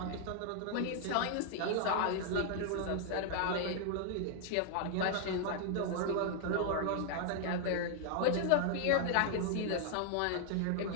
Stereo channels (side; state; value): both; different; correlation 0.00